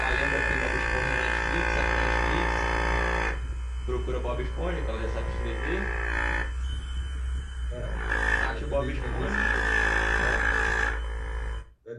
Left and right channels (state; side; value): identical; both; correlation 1.00